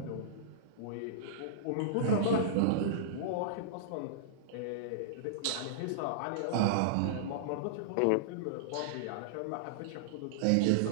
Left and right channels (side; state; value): both; different; correlation -0.02